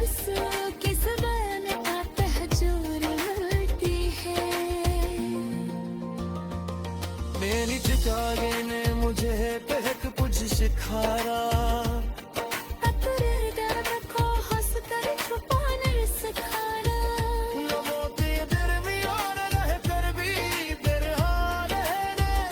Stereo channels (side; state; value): both; identical; correlation 1.00